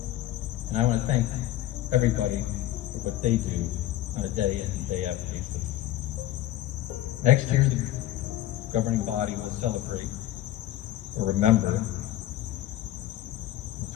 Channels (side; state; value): right; quieter; 13.9 dB